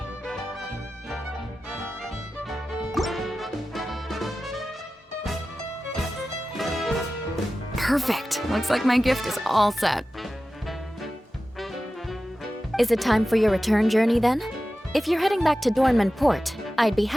Perfect. Looks like my gift is all set. Is it time for your return journey then? If you're heading back to Dornman Port, I'd be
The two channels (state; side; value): normal; both; correlation 0.94